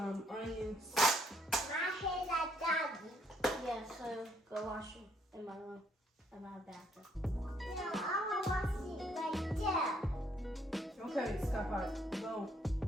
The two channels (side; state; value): both; normal; correlation 0.69